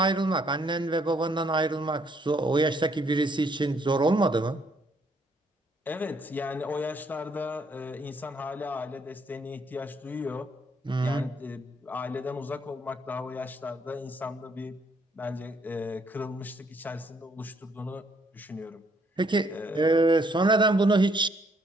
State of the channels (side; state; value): both; normal; correlation 0.68